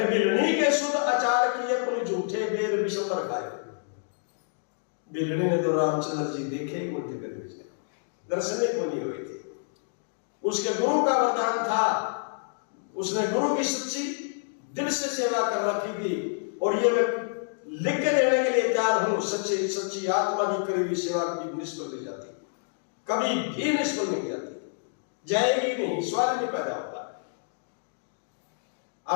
बिलनी के शुद्ध आचार किए पुनि झूठे बेर विषम पर खायो। बिलनी ने तो रामचंद्र जी देखे ही उल्टे कर भेजे, दर्शन को नहीं हुए थे। उसके गुरु का वरदान था, उसने गुरु की सच्ची दिल से सेवा कर रखी थी। और ये मैं लिख के देने के लिए तैयार हूं, सच्ची आत्मा की करी हुई सेवा कभी निष्फल नहीं जाती, कभी भी निष्फल नहीं जाती, जाएगी नहीं, सवाल नहीं पैदा होता।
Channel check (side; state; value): right; silent; digital silence